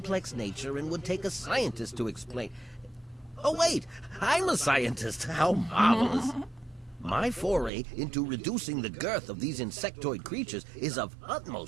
nature and would take a scientist to explain. Oh, wait, I'm a scientist. How marvelous. My foray into reducing the girth of these insectoid creatures is of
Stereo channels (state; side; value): drops out; left; at 7.7 s